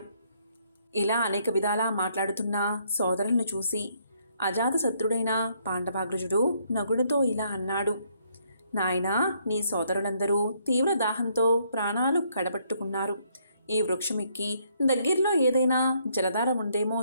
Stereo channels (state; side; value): inverted; both; correlation -0.70